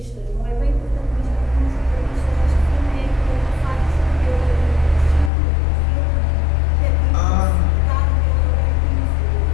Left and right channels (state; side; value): drops out; right; at 5.3 s